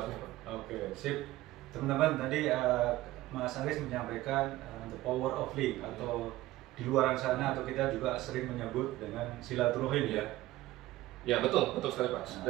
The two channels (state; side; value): quieter; left; 16.7 dB